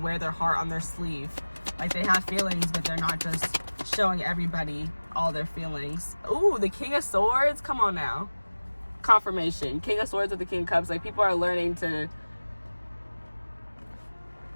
their heart on their sleeve. Like, they have feelings, but they're not just showing everybody all their feelings. Ooh, the King of Swords, come on now. Confirmation, King of Swords with the King of Cups. Like, people are learning to,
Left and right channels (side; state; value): both; inverted; correlation -1.00